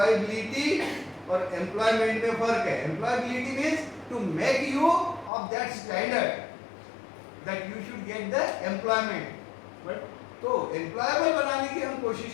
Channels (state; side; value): drops out; right; at 5.3 s